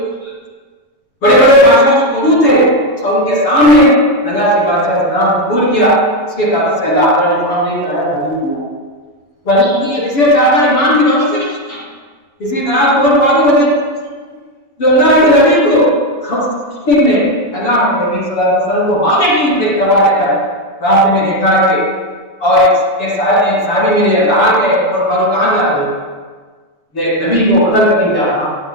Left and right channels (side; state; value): right; late; 7.0 ms